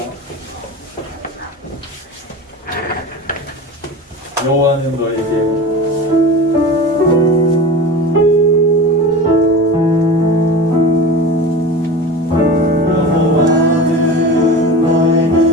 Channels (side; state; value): both; normal; correlation 0.32